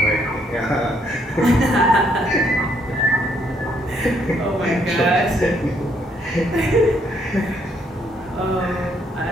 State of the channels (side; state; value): both; normal; correlation 0.70